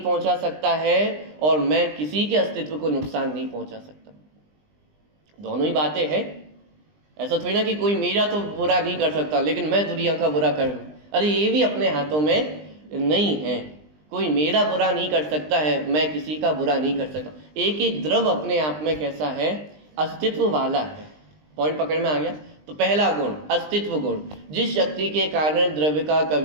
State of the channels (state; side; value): late; left; 20 ms